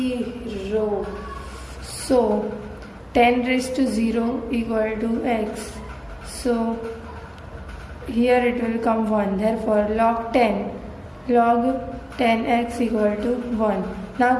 So 10 raised to 0 equal to x. So here it will come 1. Therefore log 10x equal to 1. Now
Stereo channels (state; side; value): identical; both; correlation 1.00